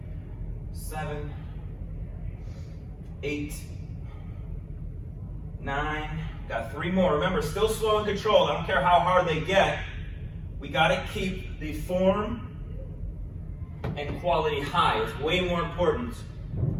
7, 8, 9. Got 3 more. Remember, still slow and controlled. I don't care how hard they get. We got to keep the form and quality high. It's way more important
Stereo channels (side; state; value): both; identical; correlation 1.00